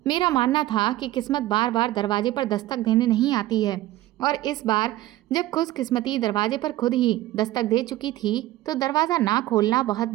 मेरा मानना था कि किस्मत बार बार दरवाजे पर दस्तक देने नहीं आती है, और इस बार जब खुशकिस्मती दरवाजे पर खुद ही दस्तक दे चुकी थी तो दरवाज़ा ना खोलना बहुत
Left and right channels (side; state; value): left; quieter; 16.0 dB